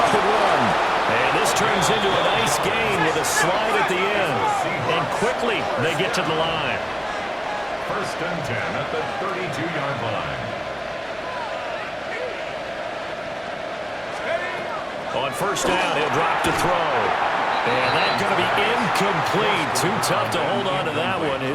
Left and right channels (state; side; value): identical; both; correlation 1.00